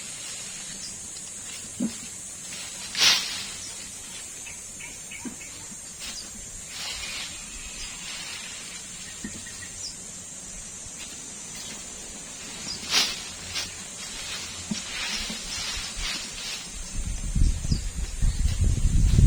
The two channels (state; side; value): identical; both; correlation 1.00